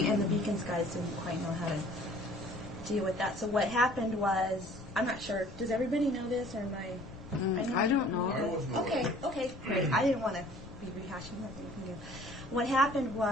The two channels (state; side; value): noise; left; rumble, 16 dB below the sound